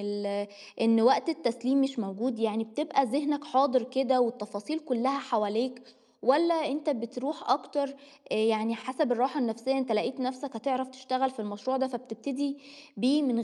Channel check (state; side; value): identical; both; correlation 1.00